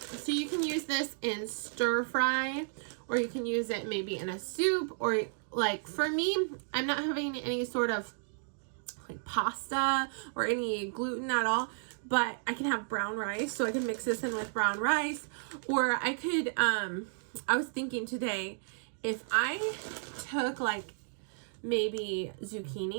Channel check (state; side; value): silent; left; digital silence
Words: you can use this in stir fry, or you can use it maybe in a soup, or like for me, I'm not having any sort of like pasta or any gluten at all, but I can have brown rice, so I can mix this in with brown rice. Or I could, I was thinking today, if I took like maybe